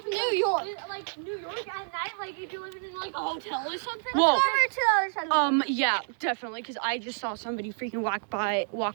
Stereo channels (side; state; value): left; silent; digital silence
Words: New York. Like New York at night, like if you're living in like a hotel or something. Whoa. Go over to the other side of the Yeah, definitely, because I just saw somebody freaking walk by,